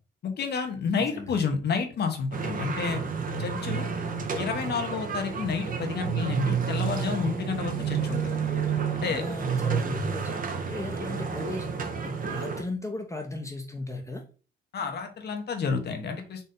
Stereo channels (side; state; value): both; normal; correlation 0.46